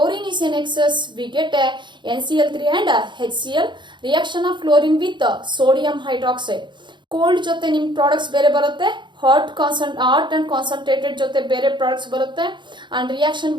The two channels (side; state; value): left; late; 0.23 ms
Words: is in excess, we get a NCl3 and HCl. Reaction of chlorine with sodium hydroxide. Cold ಜೊತೆ ನಿಮ್ products ಬೇರೆ ಬರುತ್ತೆ, hot and concentrated ಜೊತೆ ಬೇರೆ products ಬರುತ್ತೆ. And reaction